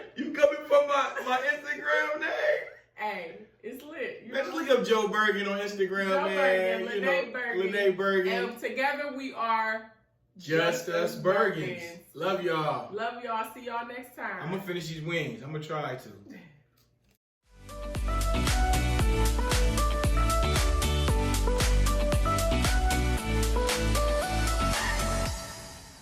You coming from my Instagram name? Hey, it's lit. You Let's know? look up Joe Bergen on Instagram, Joe man. Bergen, Lene Bergen. Bergen. And together we are Just Us Bergens. Love y'all. Love y'all. See y'all next time. I'm gonna finish these wings. I'm gonna try to.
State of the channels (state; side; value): identical; both; correlation 1.00